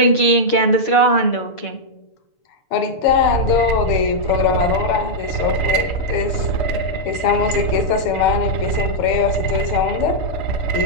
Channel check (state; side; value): late; right; 6.9 ms